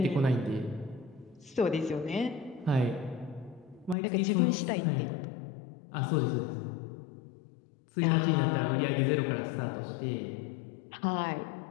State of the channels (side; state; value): right; drops out; at 4.0 s